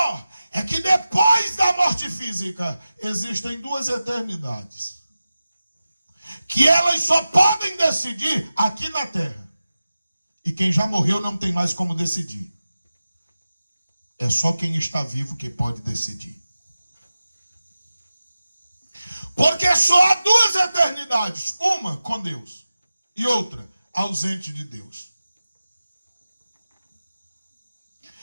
é que depois da morte física existem duas eternidades, que elas só podem decidir aqui na terra. E quem já morreu não tem mais como decidir. É só quem está vivo que pode decidir. Porque só há duas eternidades. Uma com Deus e outra ausente de Deus.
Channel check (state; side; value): inverted; both; correlation -0.95